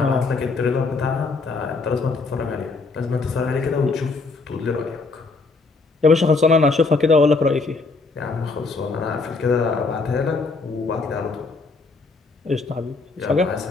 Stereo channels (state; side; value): quieter; right; 4.0 dB